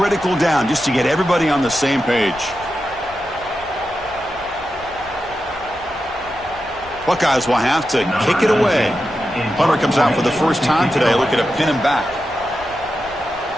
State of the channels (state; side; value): noise; left; rumble, 21 dB below the sound